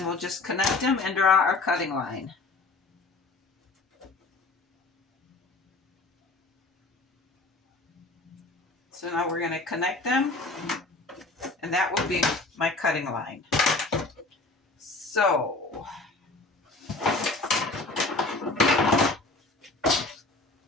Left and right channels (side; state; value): right; quieter; 3.3 dB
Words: we'll just connect them and draw our cutting line. So now we're going to connect them, and that will be my cutting line. So